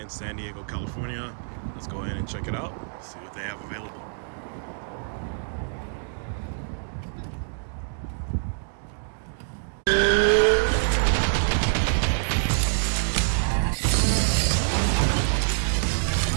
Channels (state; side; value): silent; left; digital silence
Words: San Diego, California. Let's go ahead and check it out, see what they have available.